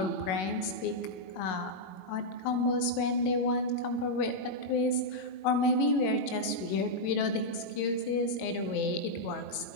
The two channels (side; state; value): right; late; 21 ms